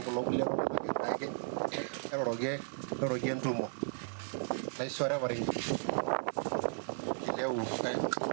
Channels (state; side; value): silent; left; digital silence